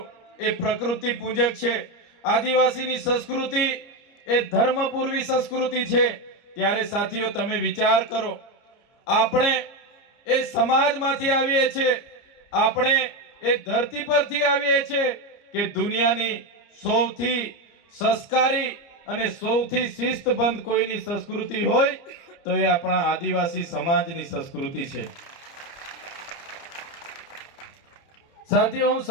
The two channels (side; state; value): right; late; 30 ms